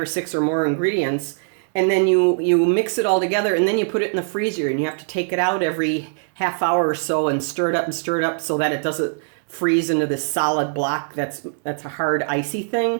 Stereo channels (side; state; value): left; silent; 65 dB below the other